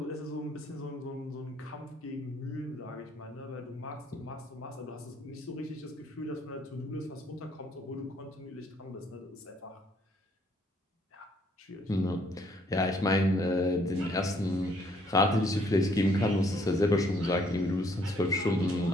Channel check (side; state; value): both; normal; correlation 0.66